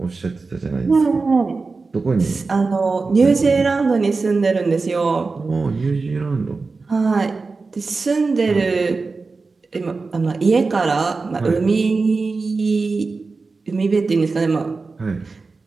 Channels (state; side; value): quieter; left; 4.1 dB